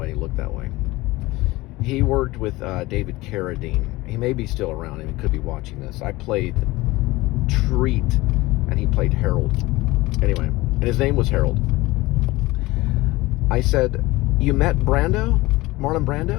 he looked that way. He worked with David Carradine. He may be still around, and he could be watching this. I played Treat, and he played Harold. Anyway, and his name was Harold. I said, you met Brando? Marlon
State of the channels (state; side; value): quieter; right; 20.1 dB